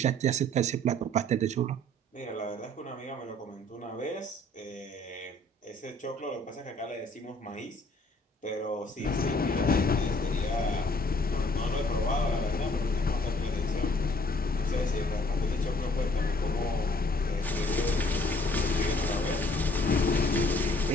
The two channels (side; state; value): both; normal; correlation 0.60